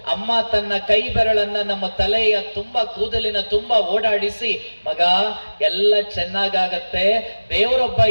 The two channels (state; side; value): inverted; both; correlation -1.00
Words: ಅಮ್ಮ ತನ್ನ ಕೈ ಬೆರಳನ್ನ ನಮ್ಮ ತಲೆಯ ತುಂಬಾ ಕೂದಲಿನ ತುಂಬಾ ಓಡಾಡಿಸಿ, ಮಗ ಎಲ್ಲ ಚೆನ್ನಾಗಾಗತ್ತೆ, ದೇವರೊಬ್ಬ